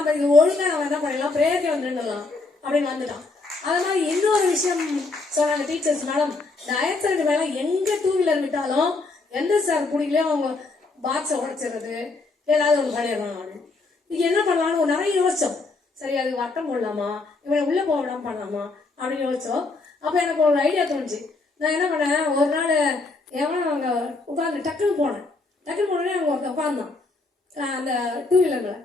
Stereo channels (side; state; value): right; quieter; 3.6 dB